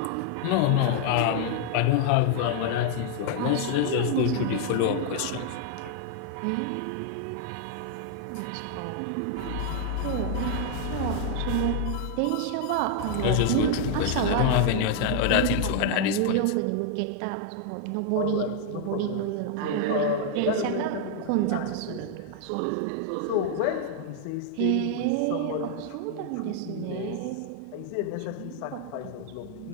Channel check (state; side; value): different; both; correlation 0.00